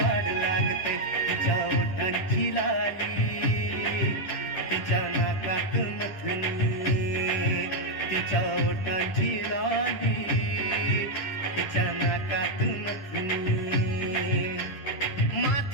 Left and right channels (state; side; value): late; right; 10 ms